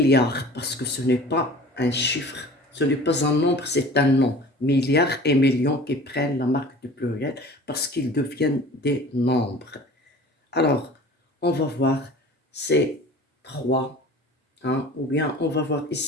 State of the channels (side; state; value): both; normal; correlation 0.43